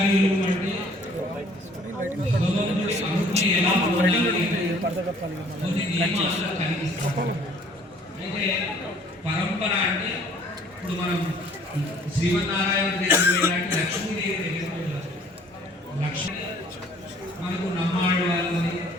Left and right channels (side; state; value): both; normal; correlation 0.56